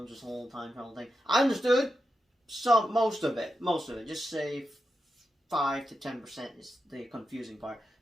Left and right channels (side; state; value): both; normal; correlation 0.88